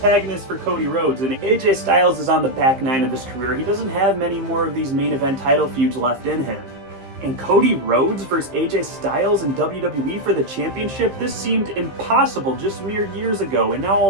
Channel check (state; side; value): late; left; 15 ms